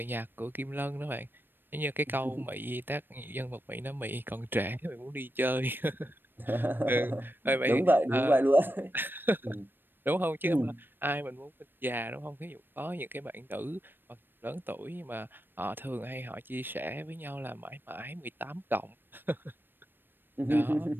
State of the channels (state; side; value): late; left; 0.096 ms